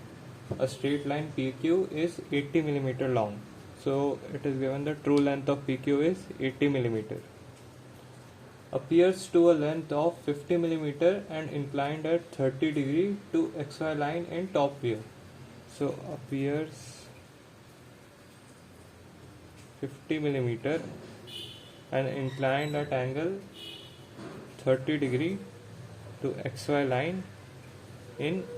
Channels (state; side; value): identical; both; correlation 1.00